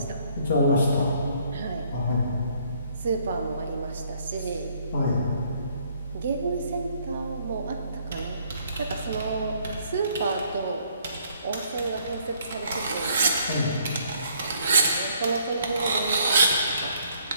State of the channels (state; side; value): inverted; both; correlation -0.65